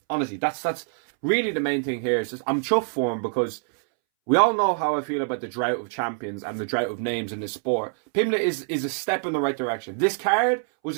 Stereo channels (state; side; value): silent; left; 62 dB below the other